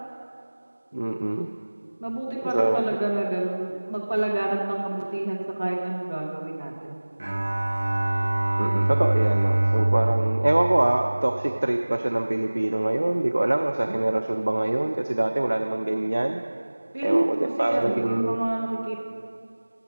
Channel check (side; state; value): both; inverted; correlation -1.00